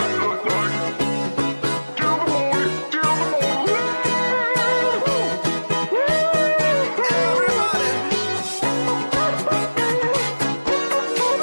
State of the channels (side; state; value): both; inverted; correlation -1.00